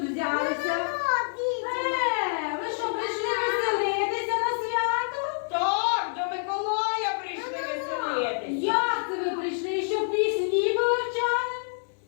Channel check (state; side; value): silent; right; 59 dB below the other